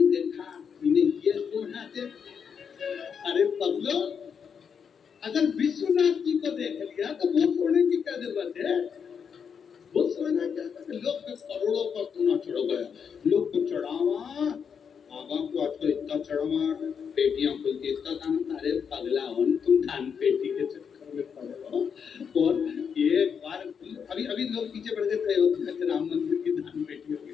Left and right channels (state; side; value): quieter; right; 6.9 dB